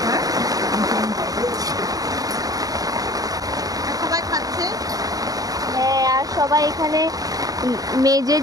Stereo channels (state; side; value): late; left; 0.18 ms